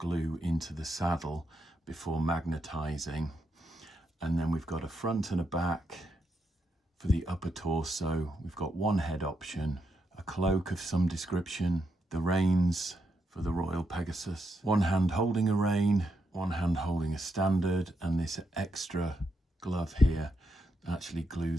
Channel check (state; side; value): normal; both; correlation 0.81